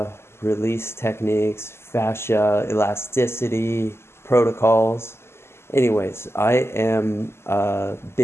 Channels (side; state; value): right; late; 0.12 ms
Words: release techniques, fascia elasticity protocols. Anyways, I am a